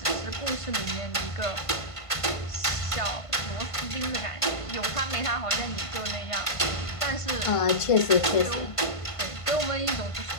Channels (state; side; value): late; right; 1.5 ms